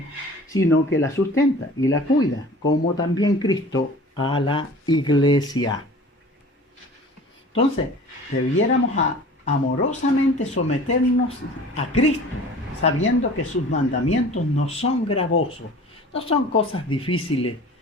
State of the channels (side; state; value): both; normal; correlation 0.44